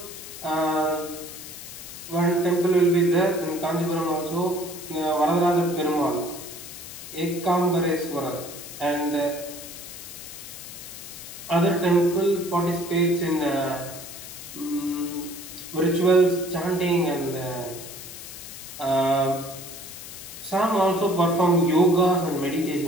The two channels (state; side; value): noise; left; hiss, 12 dB below the sound